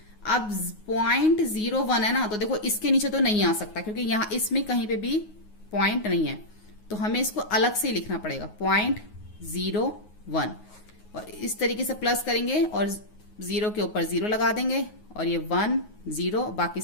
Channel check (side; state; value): right; late; 9.5 ms